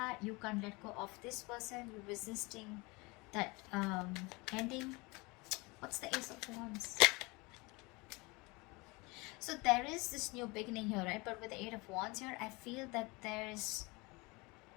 You can't let go of this person. You're resisting that ending. What's the Ace of Wands? So there is this new beginning here, right? But with the 8 of Wands here, I feel that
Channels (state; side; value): quieter; right; 25.7 dB